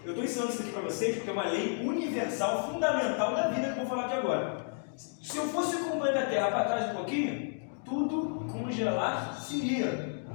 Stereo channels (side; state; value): right; silent; 57 dB below the other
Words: Eu estou ensinando isso aqui para vocês porque é uma lei universal, fundamental da vida que eu vou falar aqui agora. Se eu fosse com o planeta Terra para trás um pouquinho, tudo congelar-se-ia.